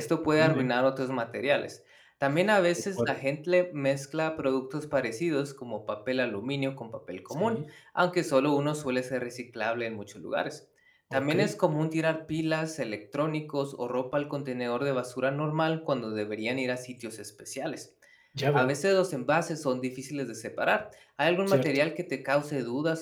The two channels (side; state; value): both; identical; correlation 1.00